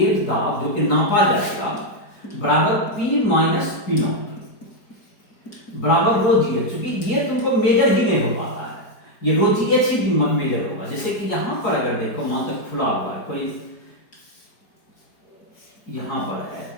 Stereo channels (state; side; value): late; right; 4.6 ms